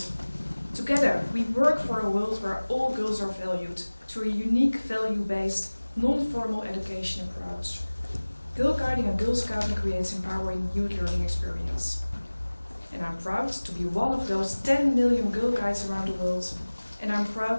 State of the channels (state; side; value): inverted; both; correlation -1.00